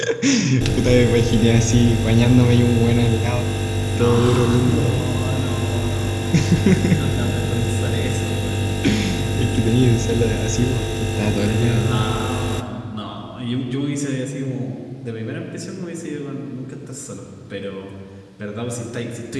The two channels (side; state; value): both; identical; correlation 1.00